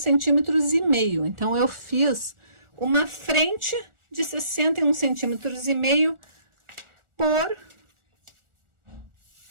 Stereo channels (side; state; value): left; late; 1.4 ms